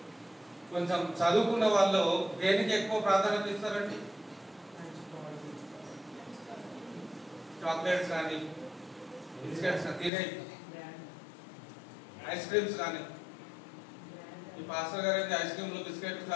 కొంచెం చదువుకున్న వాళ్ళు దేనికి ఎక్కువ ప్రాధాన్యత ఇస్తారండి? చాక్లెట్స్ కానీ బిస్కెట్స్ తినే ఐస్ క్రీమ్స్ కానీ. ఈ పాస్టర్ గారు అయితే ఐస్ క్రీమ్లు బిస్కెట్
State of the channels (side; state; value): right; drops out; at 10.1 s